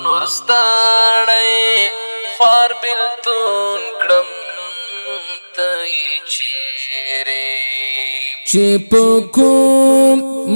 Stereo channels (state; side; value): inverted; both; correlation -1.00